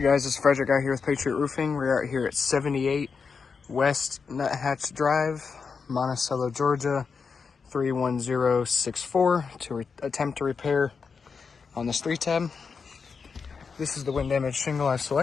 guys, it's Frederick out here with Patriot Roofing. We're out here at 78 West Nuthatch Drive, Monticello, Georgia, 31064 to attempt to repair on this 3-tab. This is the wind damage shingle I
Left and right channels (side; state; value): right; quieter; 5.4 dB